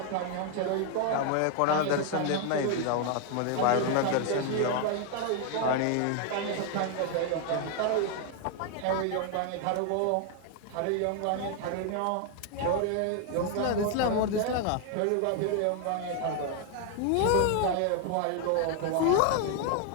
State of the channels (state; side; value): different; both; correlation 0.00